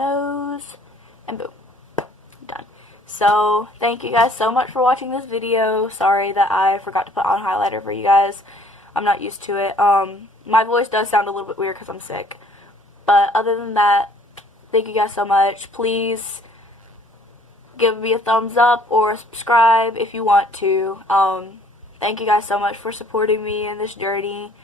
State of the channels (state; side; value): normal; both; correlation 0.58